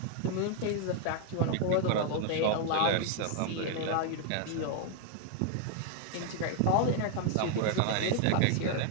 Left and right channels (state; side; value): different; both; correlation 0.00